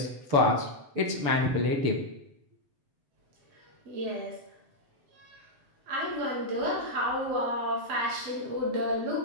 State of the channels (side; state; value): left; late; 6.9 ms